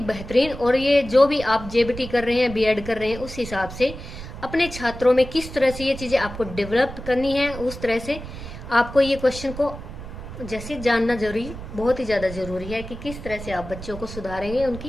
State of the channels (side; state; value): right; noise; rumble, 11 dB below the sound